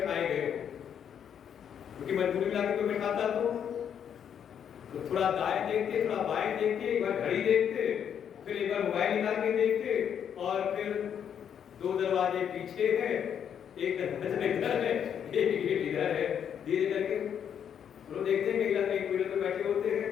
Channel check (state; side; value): quieter; right; 8.5 dB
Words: गए हो, क्योंकि मजबूरी मिला के कोई बैठाता तो थोड़ा दाएं देखते, थोड़ा बाएं देखते, एक बार घड़ी देखते, फिर एक बार मोबाइल निकाल के देखते, और फिर दो दरवाजे पीछे है, एक दरवाजा इधर है, एक गेट इधर है, धीरे करके लोग देखते हैं कई कोई पे बैठे होते